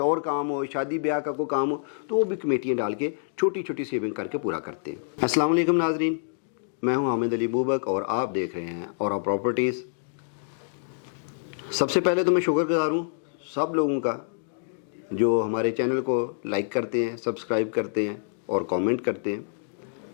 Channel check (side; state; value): right; silent; digital silence